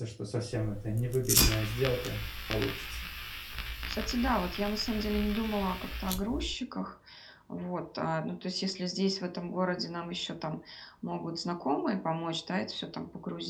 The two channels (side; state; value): both; identical; correlation 1.00